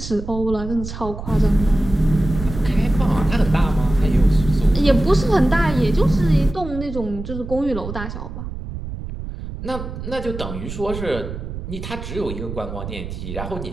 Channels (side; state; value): right; noise; rumble, 8 dB below the sound